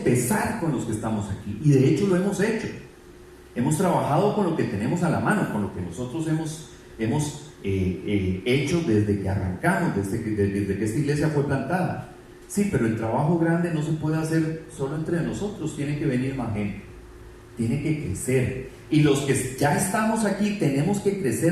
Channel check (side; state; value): both; identical; correlation 1.00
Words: con los que estamos aquí. Y de hecho lo hemos hecho. Hemos trabajado con lo que tenemos a la mano, con lo que nosotros hemos hecho desde que arrancamos, desde que esta iglesia fue plantada. Sí, pero el trabajo grande no se puede hacer solo entre nosotros, tiene que venir más gente, tiene que crecer. Y los que ya estamos aquí tenemos que